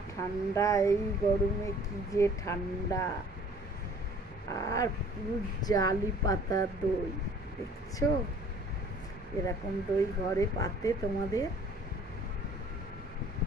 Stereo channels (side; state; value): both; normal; correlation 0.53